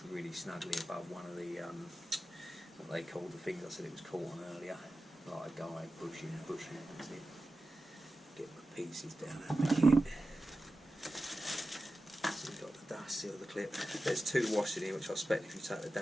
really snugly above one of the, what they called the things I said it was caught on earlier. Like a guy pushing. That's it. Get the pieces down at the kit. So we've got the dust seal, the clip. There's two washers in here, which I expect if you take the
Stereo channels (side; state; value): both; normal; correlation 0.93